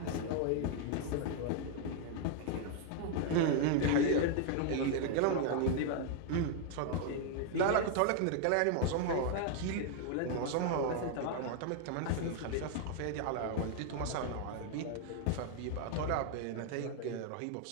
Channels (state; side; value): different; both; correlation 0.00